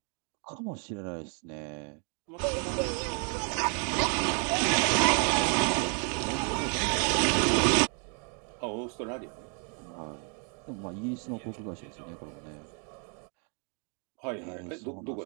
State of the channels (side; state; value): left; quieter; 39.9 dB